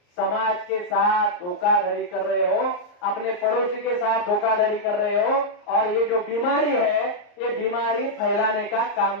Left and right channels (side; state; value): right; late; 34 ms